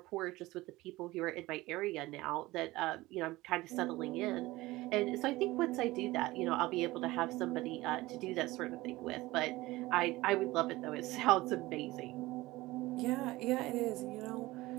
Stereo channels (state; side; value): quieter; left; 19.2 dB